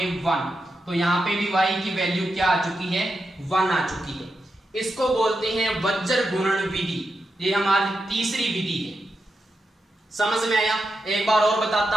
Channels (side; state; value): both; normal; correlation 0.87